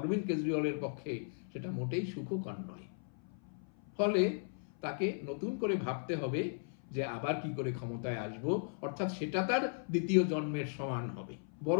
কেজরিওয়ালের পক্ষে সেটা মোটেই সুখকর নয়। ফলে তাকে নতুন করে ভাবতে হবে যে আবার কি করে ক্ষমতায় আসব, অর্থাৎ সেটা তার দ্বিতীয় জন্মের সমান হবে।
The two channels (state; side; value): silent; right; 53 dB below the other